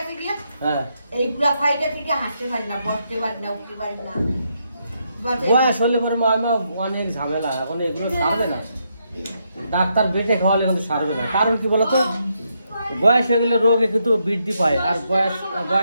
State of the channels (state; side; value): inverted; both; correlation -0.79